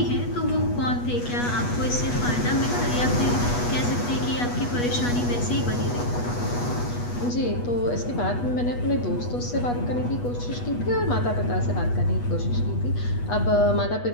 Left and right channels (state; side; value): late; right; 8.3 ms